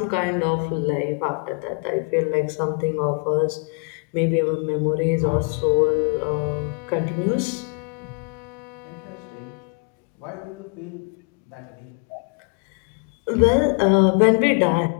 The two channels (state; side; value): quieter; right; 37.3 dB